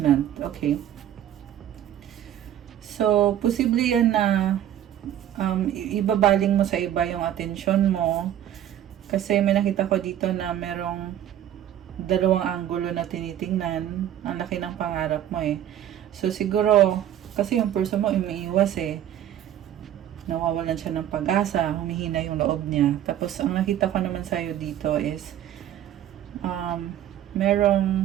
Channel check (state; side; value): quieter; left; 11.2 dB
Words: Okay. So, posible yan na ibabaling mo sa iba yung attention mo. Kasi may nakita ko dito na merong dalawang anggulo na tinitingnan. Ang laki ng pangarap mo eh. So, siguro, kasi yung person mo umiiwas eh. Nawawalan siya ng pag-asa, humihina yung loob niya. Tapos, ang nakita ko naman sa'yo dito is,